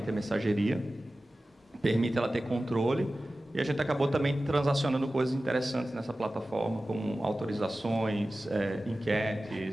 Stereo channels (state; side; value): normal; both; correlation 0.95